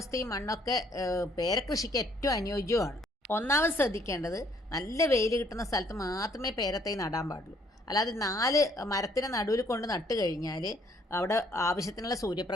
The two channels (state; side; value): normal; both; correlation 0.65